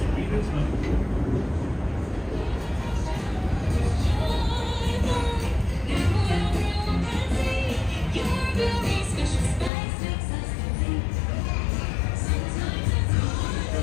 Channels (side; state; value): right; drops out; at 9.7 s